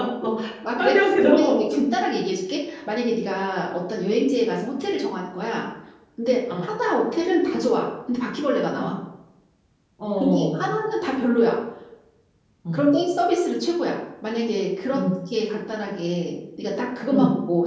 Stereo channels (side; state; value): both; identical; correlation 1.00